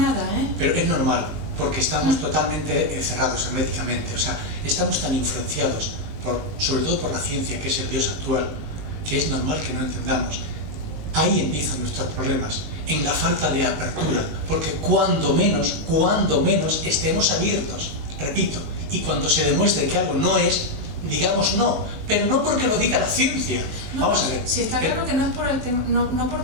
Pero es normal, porque estamos totalmente cerrados herméticamente, o sea, estamos tan influenciados, sobre todo por la ciencia, que es el Dios actual, que es normal que no entendamos. Ahí empiezan nuestros problemas, en la falta de apertura, porque cuando menos estemos abiertos, repito, y cuando se demuestre que algo no es, digamos no, pero no porque lo diga la ciencia. No, vamos a ver. Sí, está claro que no es por el tema, no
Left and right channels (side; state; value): left; late; 20 ms